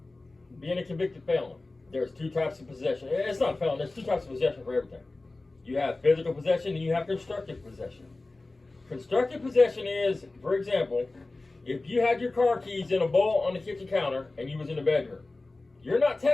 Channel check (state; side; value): quieter; right; 3.2 dB